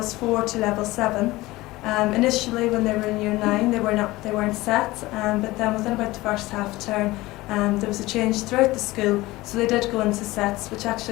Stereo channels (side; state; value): right; quieter; 19.3 dB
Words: 4 to level 7. Initially, when they were in Year 9, they weren't set, but then within about the first half term, there was a change throughout the school, so they did go into sets, which